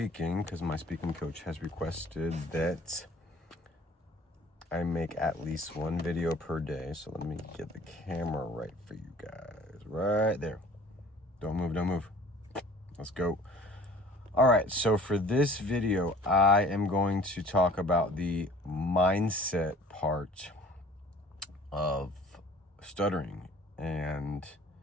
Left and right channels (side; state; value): both; normal; correlation 0.48